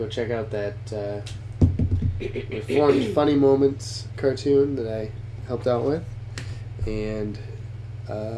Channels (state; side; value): identical; both; correlation 1.00